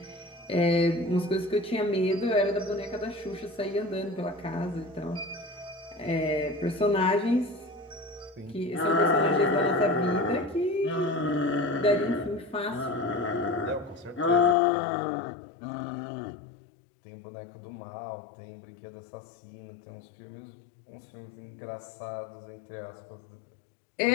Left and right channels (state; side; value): drops out; right; at 14.6 s